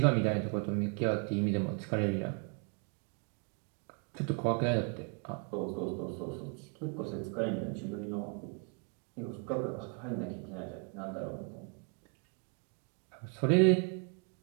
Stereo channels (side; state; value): left; quieter; 38.4 dB